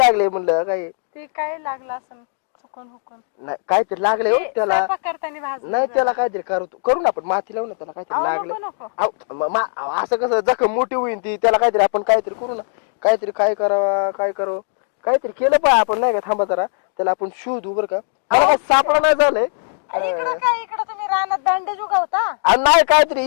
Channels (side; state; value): right; silent; 66 dB below the other